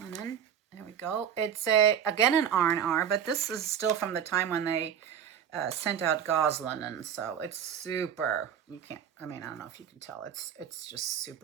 There we go. It's again an R&R, but this is still from the time when they sent out gauze linen, so it's super. You can't. I mean, I don't know if you can tell. It's just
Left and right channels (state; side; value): quieter; left; 8.7 dB